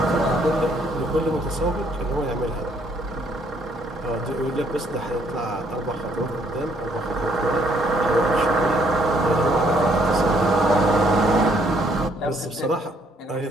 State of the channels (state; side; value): normal; both; correlation 0.67